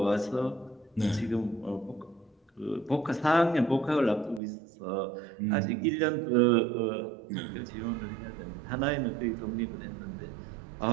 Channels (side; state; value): left; drops out; at 4.4 s